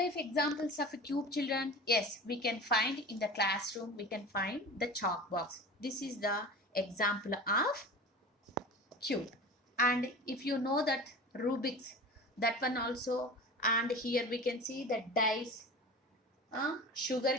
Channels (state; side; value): normal; both; correlation 0.35